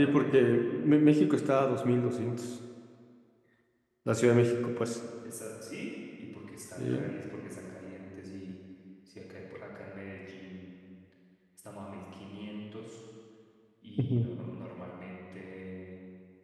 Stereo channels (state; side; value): identical; both; correlation 1.00